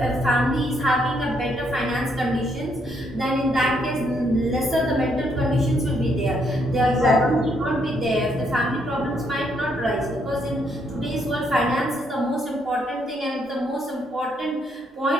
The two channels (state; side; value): normal; both; correlation 0.73